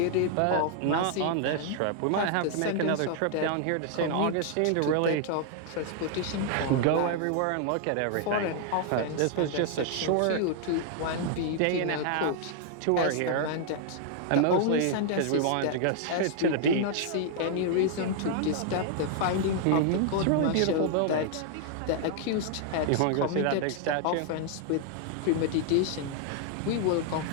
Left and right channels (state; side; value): different; both; correlation 0.00